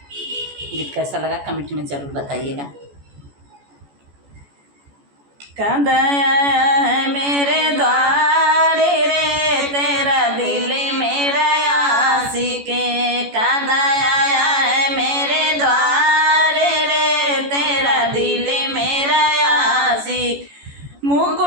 गीत कैसा लगा कमेंट में ज़रूर बताइएगा। कद आया है मेरे द्वार रे तेरा दिल मेरा आशिक, कद आया है मेरे द्वार रे तेरा दिल मेरा आशिक।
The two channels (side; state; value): left; late; 14 ms